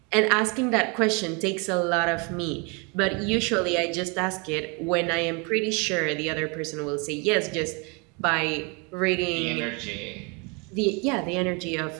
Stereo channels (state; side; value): quieter; left; 31.3 dB